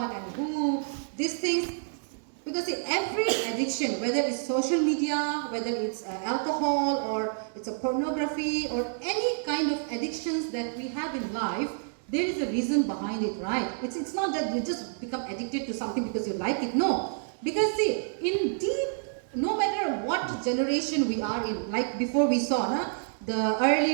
and who, these things. Because see, every addiction, whether it's social media, whether it's alcohol, or it's a pornography, or any kind of addictions that we have in life, there is a reason behind it, right? It's not that you just become addicted to something because you like it. No. Because see, in deep, no matter what generation we are in, like before we saw, the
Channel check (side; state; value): left; silent; digital silence